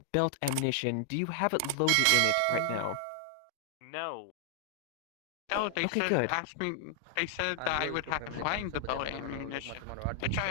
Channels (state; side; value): different; both; correlation 0.00